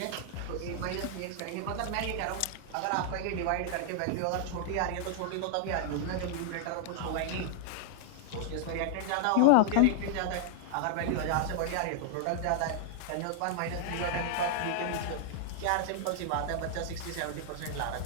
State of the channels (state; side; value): different; both; correlation 0.00